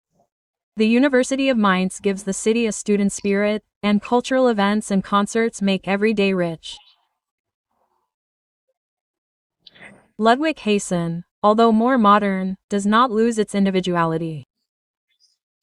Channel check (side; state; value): both; identical; correlation 1.00